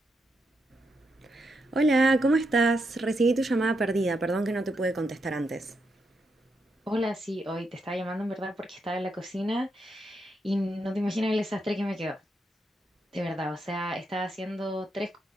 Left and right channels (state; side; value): normal; both; correlation 0.82